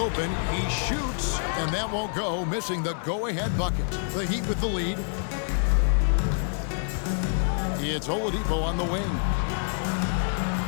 He shoots, and that won't go, missing the go-ahead bucket. The Heat with the lead. It's Oladipo on the wing.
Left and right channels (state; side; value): silent; right; 59 dB below the other